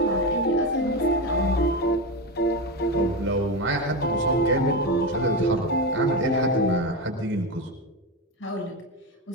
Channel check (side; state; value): both; normal; correlation 0.16